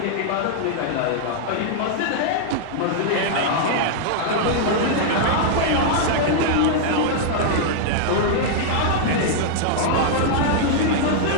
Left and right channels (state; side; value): different; both; correlation -0.01